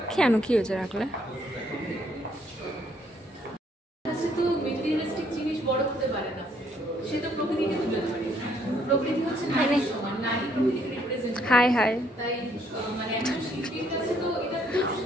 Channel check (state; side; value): normal; both; correlation 0.68